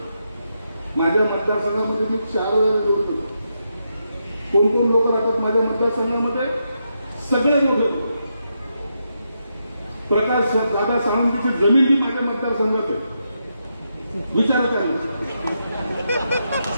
माझ्या मतदारसंघामध्ये मी 4 वेळा निवडून गेलो. कोण कोण लोक राहतात माझ्या मतदारसंघामध्ये? सगळे लोक. प्रकाश दादा सावंतची जमीन ही माझ्या मतदारसंघात आहे. विचारा काय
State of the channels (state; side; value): inverted; both; correlation -0.83